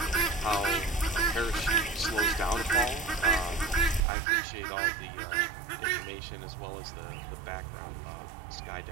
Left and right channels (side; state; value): left; drops out; at 4.0 s